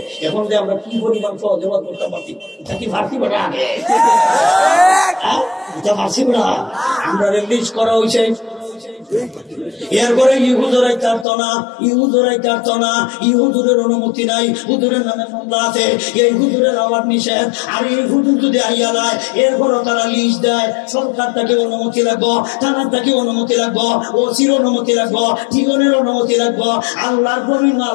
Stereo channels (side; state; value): right; drops out; at 11.2 s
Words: এখন যে আমরা কি পরিমাণ সহজ করতে পারছি, এটা কি ফার্সি বড়া আগে এটা ফার্সি বড়া আমরা রিলিজ করা হয়েছে। এরপরে ইহুদুরাই কাটতো না, ইহুদুরের অনুমতি নাই, হুজুরের নামে মামলা আছে, এই হুজুরের আওয়াজ নিষেধ। আর এই হুজুর যদি আইয়া দেয়, এরপরও তারা লিস্ট দেয়, সরকার তাকে অনুমতি লাগবো, থানার তাকে অনুমতি লাগবো, ওসির অনুমতি লাগবো, ঠিকানের অনুমতি লাগবো, আল্লাহর বিভিন্ন